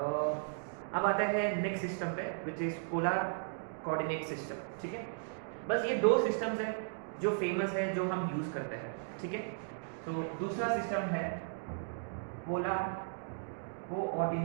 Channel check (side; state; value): left; silent; digital silence